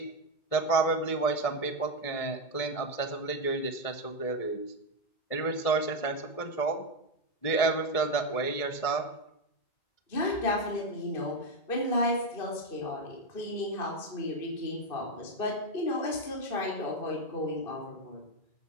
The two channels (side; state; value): right; late; 1.7 ms